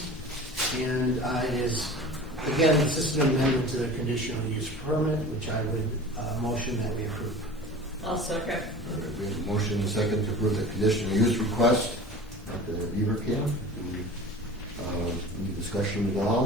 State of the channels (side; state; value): both; normal; correlation 0.38